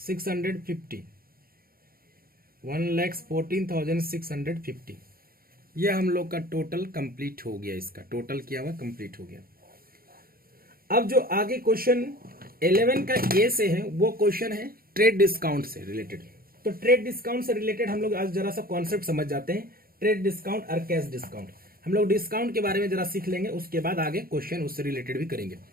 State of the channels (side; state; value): left; late; 0.43 ms